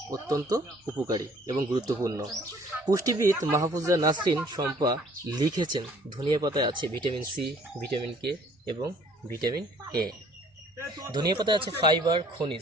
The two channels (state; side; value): normal; both; correlation 0.57